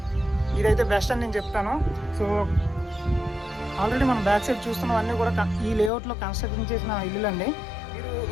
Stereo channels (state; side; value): drops out; right; at 5.9 s